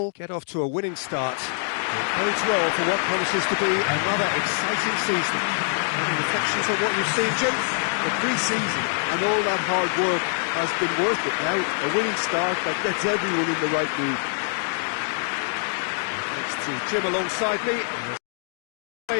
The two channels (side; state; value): right; silent; digital silence